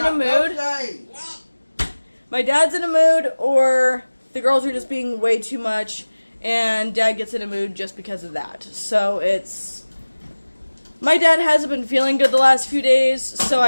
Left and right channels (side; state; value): both; inverted; correlation -1.00